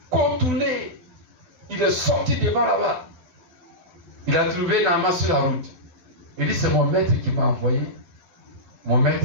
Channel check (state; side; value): late; left; 12 ms